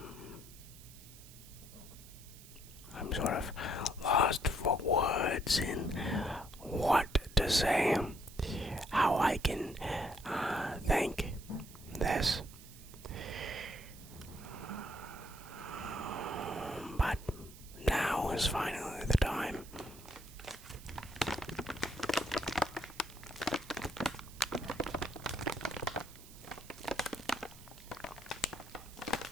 I'm sort of lost for words in what to say, how I can thank this. But now is finally the time.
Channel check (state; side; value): noise; right; hiss, 19 dB below the sound